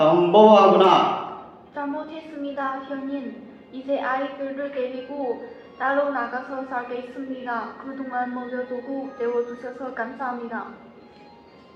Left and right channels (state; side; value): identical; both; correlation 1.00